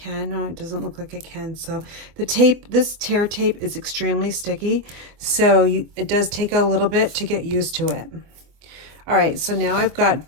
No, it doesn't look like I can. So the tape, this tear tape is extremely sticky, so it does take a little bit to get used to it. All right, so now I've got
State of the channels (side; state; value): left; late; 24 ms